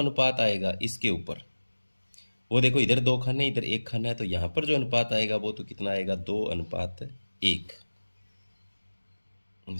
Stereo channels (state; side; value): inverted; both; correlation -1.00